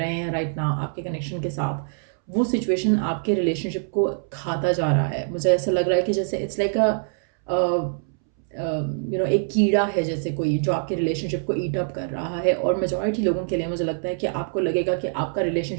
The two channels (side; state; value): left; silent; 62 dB below the other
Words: हैं राइट नाउ आपके कनेक्शन के साथ, वो सिचुएशन आपके रिलेशनशिप को खाता जा रहा है। मुझे ऐसा लग रहा है कि जैसे इट्स लाइक एक कीड़ा है जैसे कोई, जो आपके रिलेशनशिप को ईट अप कर रहा है। और मेजॉरिटी लोगों के लिए मुझे लगता है कि आपको लगेगा कि आपका